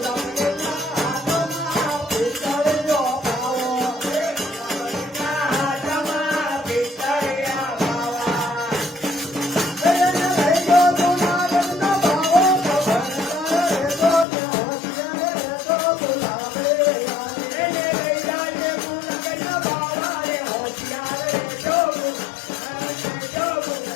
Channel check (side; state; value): right; drops out; at 14.2 s